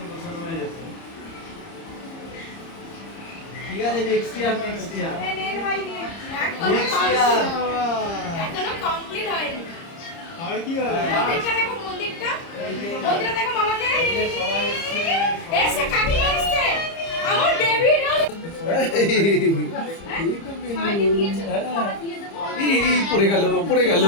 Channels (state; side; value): late; right; 30 ms